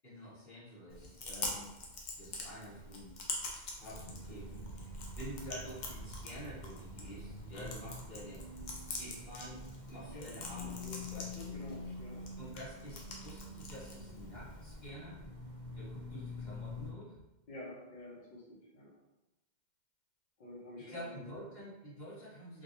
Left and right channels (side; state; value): right; late; 2.1 ms